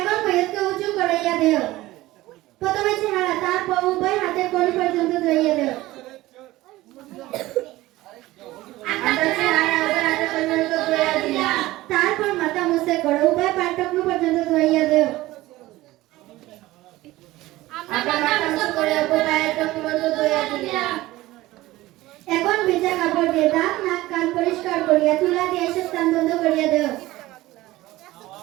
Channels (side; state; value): left; quieter; 17.7 dB